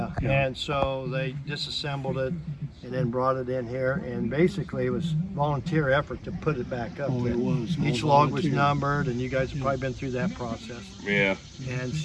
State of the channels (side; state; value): both; identical; correlation 1.00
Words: And so they disassembled it and then brought it in here, and basically it was volunteer effort to put it back up. Oh, there. it was. all Each log was volunteer. numbered, and you guys have probably been through that process. Yeah. And